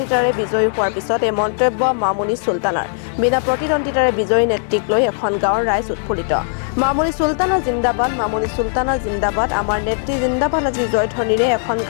বিজয়ী হোৱাৰ পিছত এই মন্তব্য মামুনি চুলতানাৰ বিনা প্ৰতিদ্বন্দিতাৰে বিজয়ী নেত্ৰীক লৈ এখন গাঁৱৰ ৰাইজ উৎফুল্লিত মামুনি চুলতানা জিন্দাবাদ মামুনি চুলতানা জিন্দাবাদ আমাৰ নেত্ৰী জিন্দাবাদ আজি জয়ধ্বনিৰে এখন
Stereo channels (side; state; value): right; silent; 61 dB below the other